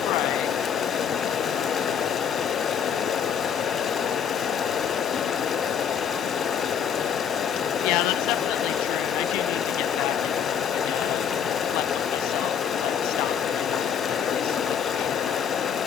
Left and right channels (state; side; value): quieter; right; 8.0 dB